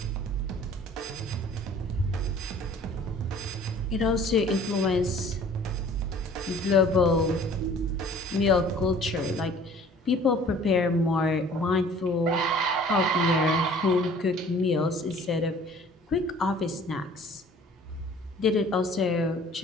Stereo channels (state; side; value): normal; both; correlation 0.51